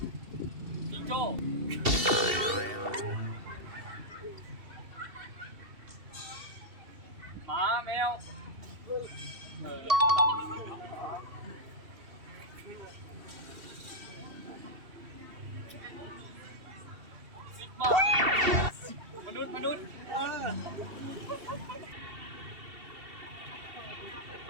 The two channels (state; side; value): late; left; 2.7 ms